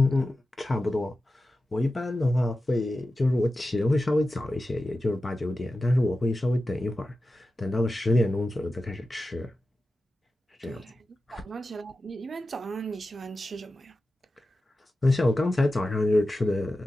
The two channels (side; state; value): both; normal; correlation 0.93